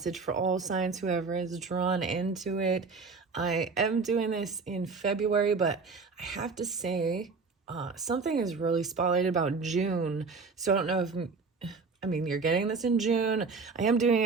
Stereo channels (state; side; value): quieter; left; 4.5 dB